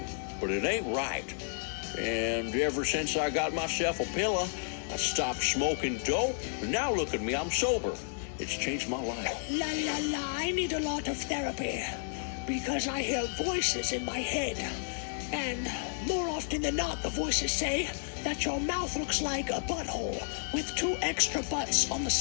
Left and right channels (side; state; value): right; silent; digital silence